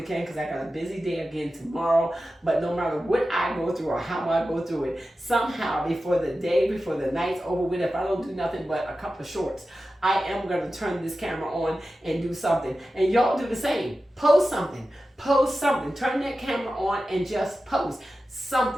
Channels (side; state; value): both; normal; correlation 0.93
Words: can, because I got a busy day again tomorrow. But no matter what I go through or how I go through it, somehow before the night's over with, if I don't do nothing but a couple of shorts, I am going to turn this camera on and do something. And y'all do the same. Post something. Post something. Turn that camera on and just post